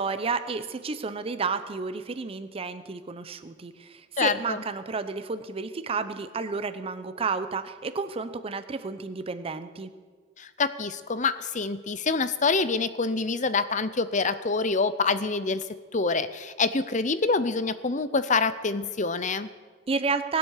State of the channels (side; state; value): both; normal; correlation 0.00